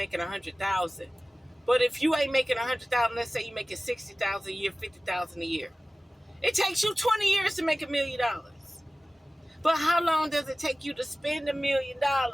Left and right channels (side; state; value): both; normal; correlation 0.97